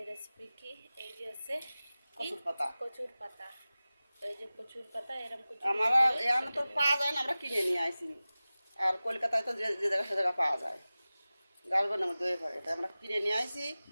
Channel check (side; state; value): both; inverted; correlation -0.97